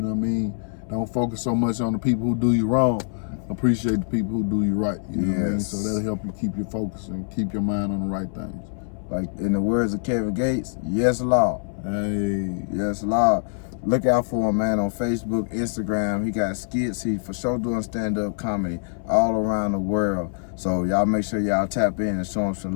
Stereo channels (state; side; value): silent; right; 61 dB below the other